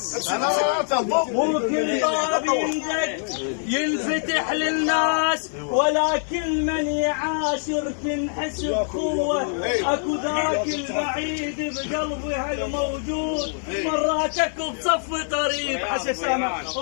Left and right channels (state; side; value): silent; right; digital silence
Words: وكل باب يندق ينفتح للناس، ولكن من يعاشر تنحس بقوة، اكو ذاك البعيد بقلبها الموجود، مراتك بصف قريب حسن سامع